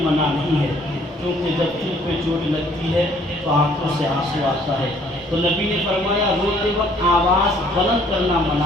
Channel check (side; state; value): both; normal; correlation 0.61